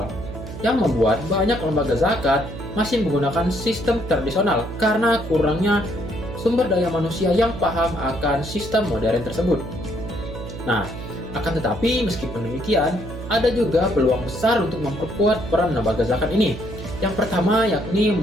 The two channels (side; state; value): right; noise; hum, 10 dB below the sound